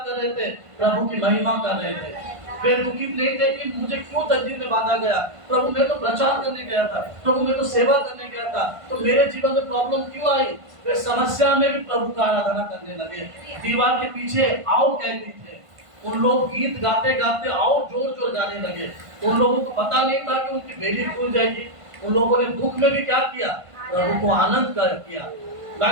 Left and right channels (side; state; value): left; late; 1.5 ms